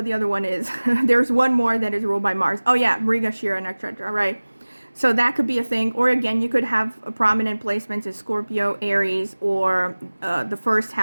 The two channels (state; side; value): inverted; both; correlation -1.00